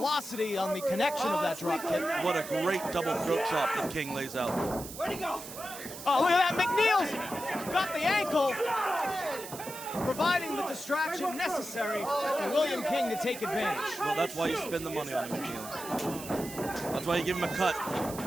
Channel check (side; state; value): right; noise; hiss, 12 dB below the sound